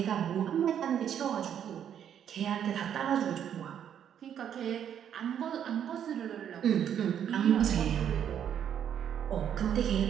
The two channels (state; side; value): quieter; left; 9.2 dB